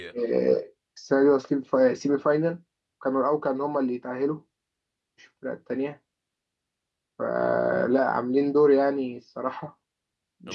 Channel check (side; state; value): both; identical; correlation 1.00